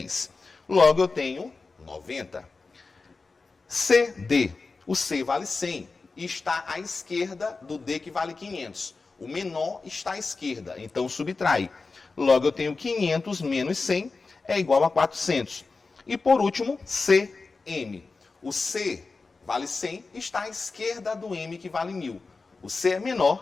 Logo, eu tenho 90. CD. O C vale 100 e está à esquerda do D, que vale 500. O menor está à esquerda, então subtrai. Logo, eu tenho 500 menos 100 é igual a 400. E por último, CM. O C vale 100 e está à esquerda do M, que vale 1000. O C é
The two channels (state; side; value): quieter; right; 4.1 dB